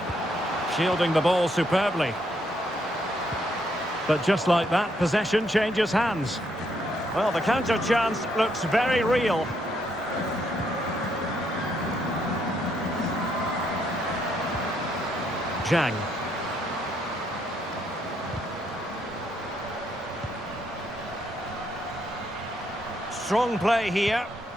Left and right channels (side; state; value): both; normal; correlation 0.74